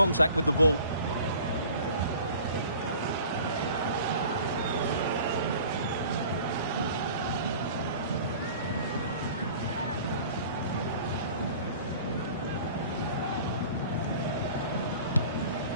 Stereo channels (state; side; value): inverted; both; correlation -0.46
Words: with the ball.